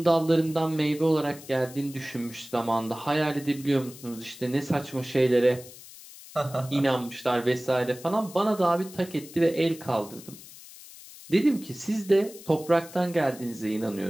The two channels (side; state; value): left; noise; hiss, 18 dB below the sound